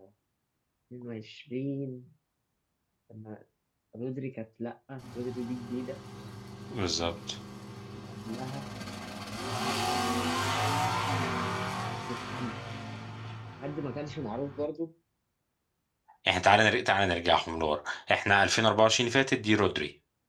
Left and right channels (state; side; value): identical; both; correlation 1.00